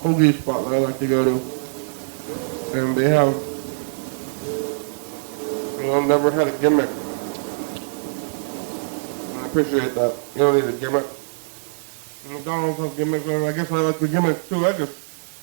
hoagie spot that I like to go to. And they have, I've never had a gimmick. And I appreciate that. You don't need a gimmick. And McDonald's has gimmicks, and I guess I like the gimmicks too.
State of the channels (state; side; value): silent; left; 63 dB below the other